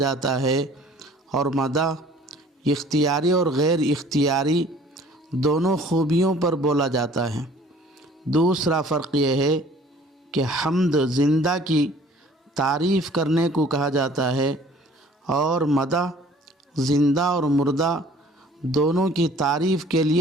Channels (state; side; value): normal; both; correlation 0.52